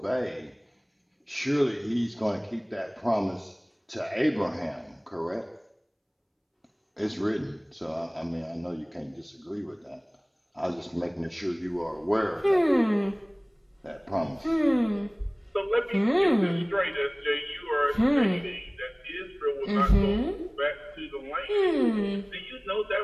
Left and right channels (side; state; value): both; identical; correlation 1.00